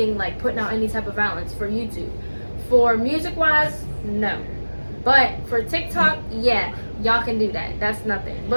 putting out any type of violence for YouTube. For music wise, no. But for TikTok, yeah, y'all can do that. That's nothing.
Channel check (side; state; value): both; inverted; correlation -1.00